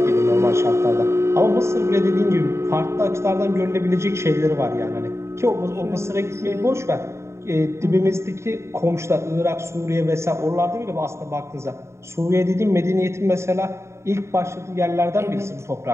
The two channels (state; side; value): late; left; 0.13 ms